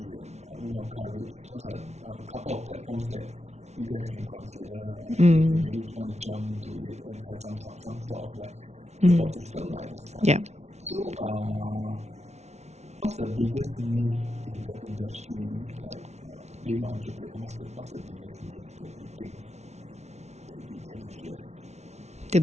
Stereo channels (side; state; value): left; late; 0.32 ms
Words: and Women of Courage. Those are a couple of platforms that you guys can consider if you really want to jump into it and have some sort of like support system like at the start. Yeah. So what's the biggest myth in the industry, like being an entrepreneur? What's the biggest myth that you think that you can address? The